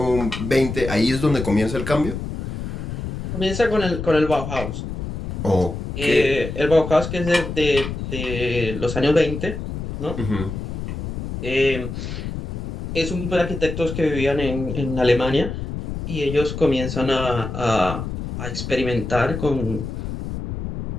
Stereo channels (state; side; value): noise; left; rumble, 6 dB below the sound